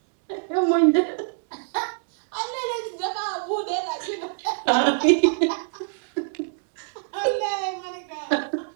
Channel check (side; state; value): left; silent; 61 dB below the other